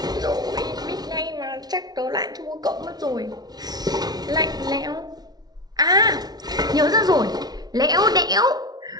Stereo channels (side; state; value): left; late; 0.19 ms